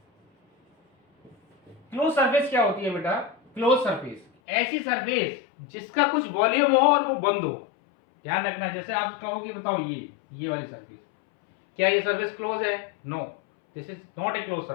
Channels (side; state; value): right; drops out; at 4.2 s